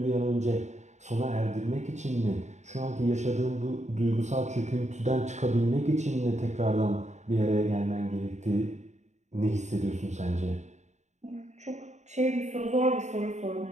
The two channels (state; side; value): late; left; 0.34 ms